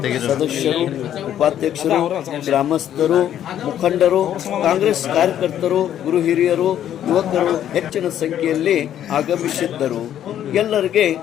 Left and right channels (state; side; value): quieter; right; 10.7 dB